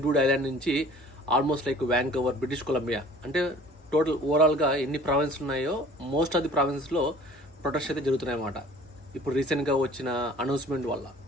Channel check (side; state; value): both; normal; correlation 0.49